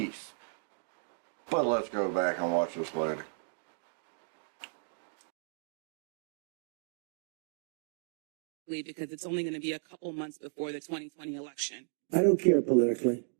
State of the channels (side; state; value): left; silent; digital silence